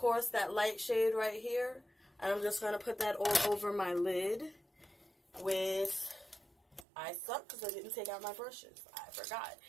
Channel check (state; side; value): drops out; left; at 6.9 s